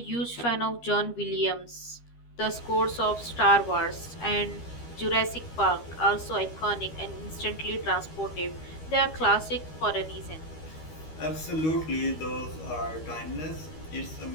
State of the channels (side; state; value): right; late; 13 ms